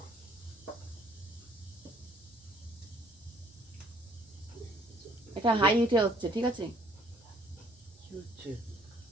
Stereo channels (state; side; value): normal; both; correlation 0.61